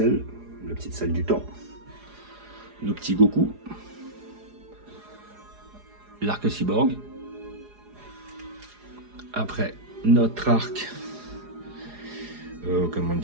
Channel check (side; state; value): left; late; 4.8 ms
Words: la petite salle du temps. Nos petits Goku. L'arc-cyborg. Après, notre arc, comment